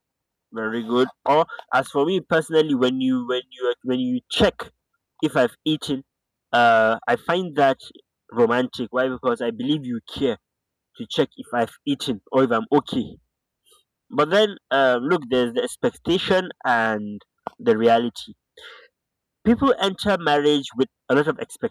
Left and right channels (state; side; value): identical; both; correlation 1.00